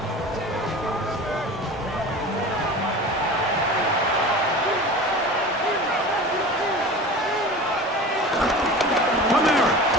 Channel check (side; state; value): both; normal; correlation 0.35